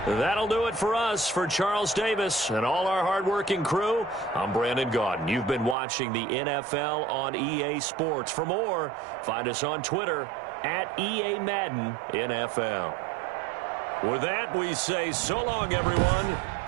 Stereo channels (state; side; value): drops out; left; at 5.8 s